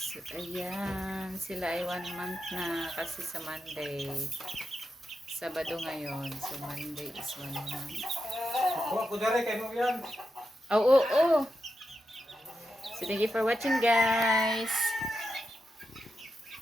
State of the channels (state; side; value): normal; both; correlation 0.87